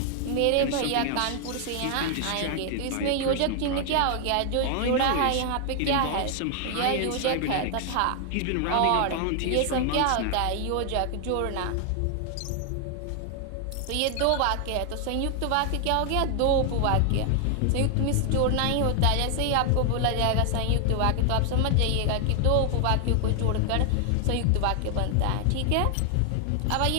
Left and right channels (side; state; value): both; different; correlation 0.00